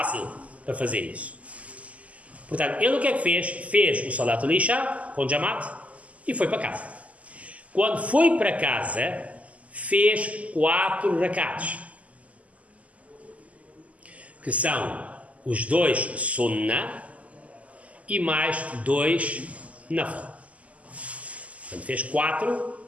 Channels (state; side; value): late; left; 0.070 ms